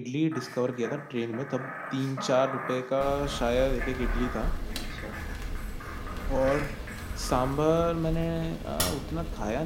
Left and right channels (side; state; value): both; identical; correlation 1.00